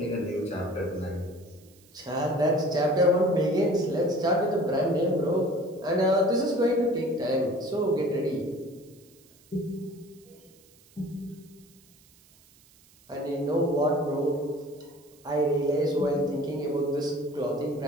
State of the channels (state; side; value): noise; right; hiss, 28 dB below the sound